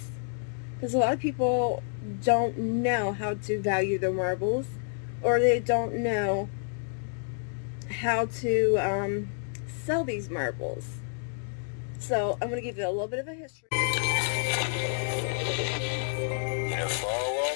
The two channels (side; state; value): right; silent; digital silence